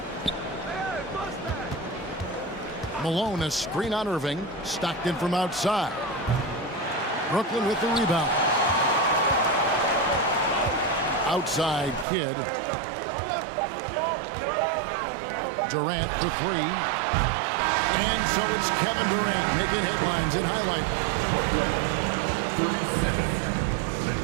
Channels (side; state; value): left; drops out; at 12.1 s